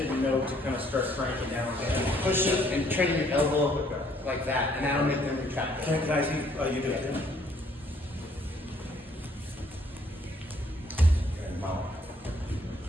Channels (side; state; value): both; normal; correlation 0.64